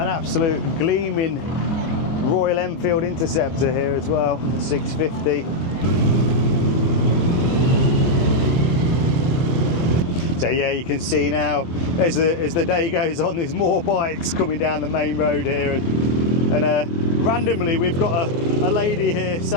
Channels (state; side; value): late; right; 24 ms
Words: absolute gleaming Royal Enfield Interceptor here as well, the 650. So yeah, you can see now as the day goes on, there's more bikes coming down the main road here, and randomly we've got a lady here